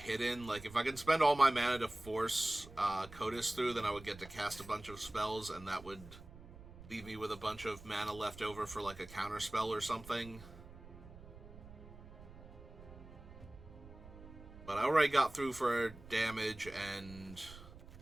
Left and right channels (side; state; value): right; noise; rumble, 17 dB below the sound